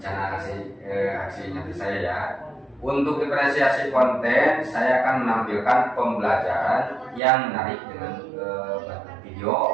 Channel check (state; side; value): drops out; left; at 7.2 s